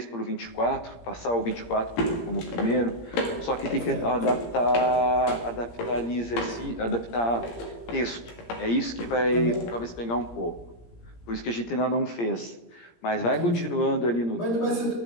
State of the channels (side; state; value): right; late; 17 ms